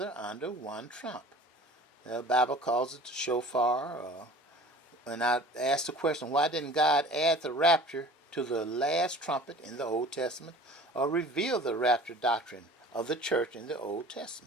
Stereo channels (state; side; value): normal; both; correlation 0.44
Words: under one trump. The Bible calls it the shofar. And I asked the question, why didn't God add the rapture to the last trumpet in the Old Testament, or reveal the rapture doctrine of the church in the Old